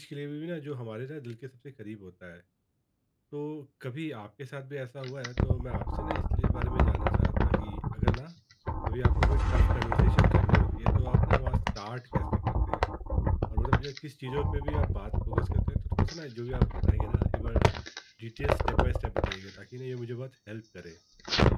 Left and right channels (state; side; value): identical; both; correlation 1.00